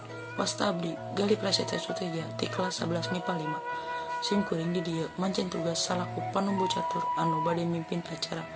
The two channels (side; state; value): both; identical; correlation 1.00